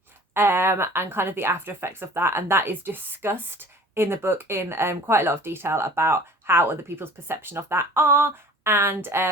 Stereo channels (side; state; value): both; normal; correlation 0.46